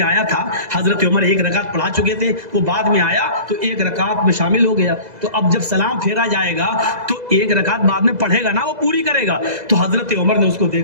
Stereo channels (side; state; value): left; late; 2.0 ms